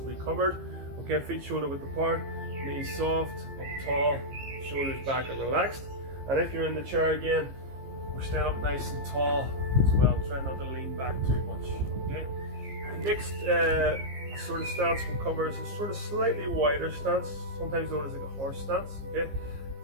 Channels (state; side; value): late; left; 15 ms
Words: we covered. Okay, feet shoulder width apart, knees soft, up tall, shoulders back and relaxed. And if you're in the chair again, we're staying up nice and tall as well. Try not to lean back too much. Okay, the next sort of stance we'll cover is a sort of slightly wider stance, sometimes known as like a horse stance. Okay,